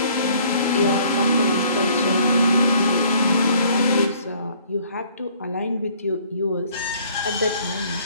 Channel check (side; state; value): both; inverted; correlation -0.58